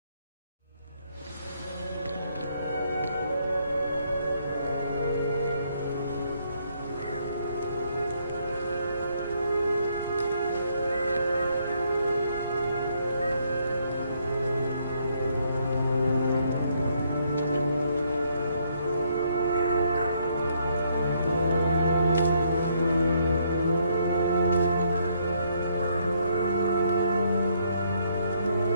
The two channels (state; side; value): inverted; both; correlation -0.71